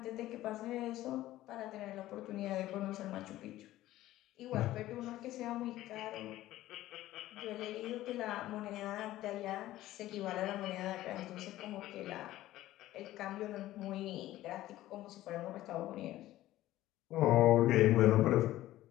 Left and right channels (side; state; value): right; quieter; 15.2 dB